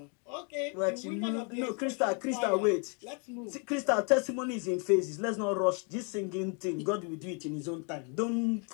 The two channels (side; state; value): right; quieter; 37.2 dB